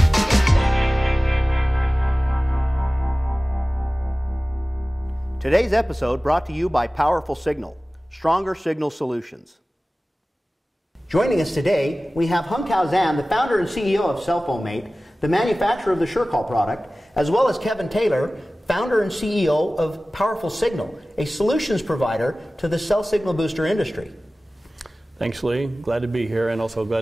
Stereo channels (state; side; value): normal; both; correlation 0.97